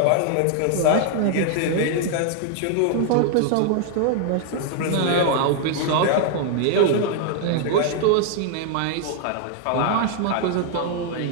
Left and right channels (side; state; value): both; different; correlation 0.00